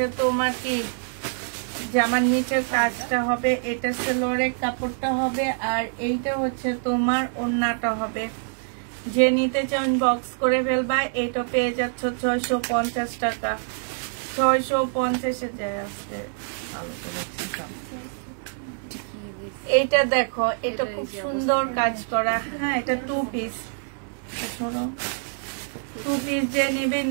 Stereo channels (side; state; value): left; silent; 61 dB below the other